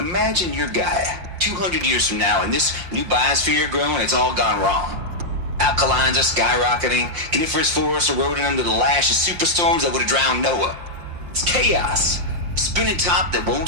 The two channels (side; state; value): left; late; 5.7 ms